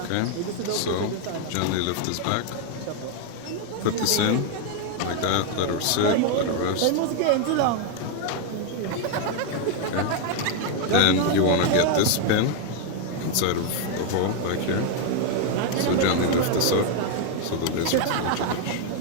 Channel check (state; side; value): different; both; correlation 0.01